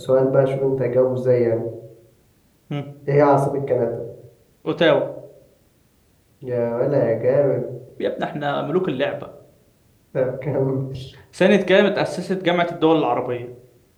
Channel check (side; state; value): both; identical; correlation 1.00